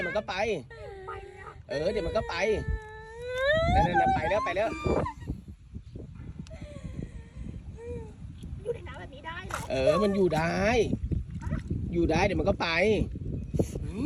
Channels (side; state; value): both; identical; correlation 1.00